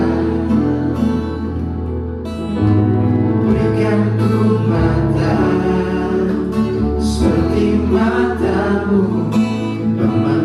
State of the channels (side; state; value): both; identical; correlation 1.00